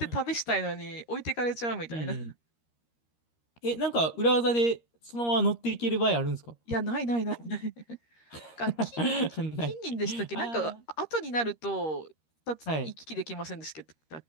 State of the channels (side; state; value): right; late; 13 ms